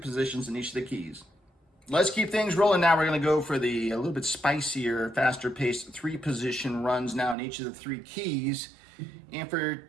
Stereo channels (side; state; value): left; drops out; at 7.4 s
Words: in each of the keys. Let's keep things rolling now. We're going to go for the a little bit spicier, faster paced three position runs now in each of the three keys. And for